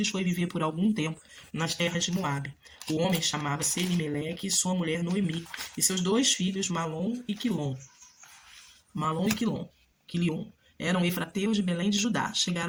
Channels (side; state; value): both; identical; correlation 1.00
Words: foi viver por algum tempo nas terras de Moabe. O homem chamava-se Elimeleque e sua mulher Noemi, e seus 2 filhos, Malom e Quilom. Malom e Quilion. Eram efrateus de Belém de Judá.